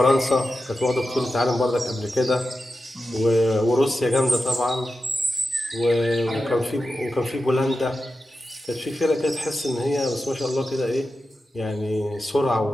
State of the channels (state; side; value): normal; both; correlation 0.91